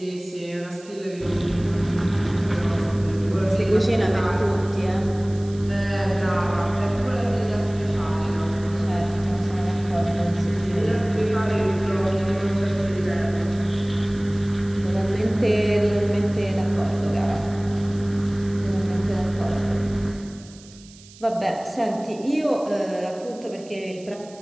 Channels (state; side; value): noise; right; hiss, 23 dB below the sound